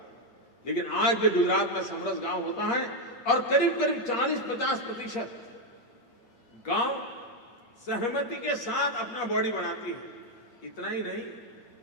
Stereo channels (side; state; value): right; late; 8.4 ms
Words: लेकिन आज भी गुजरात में समरस गांव होता है और करीब करीब 40-50% गांव सहमति के साथ अपना बॉडी बनाती है। इतना ही नहीं,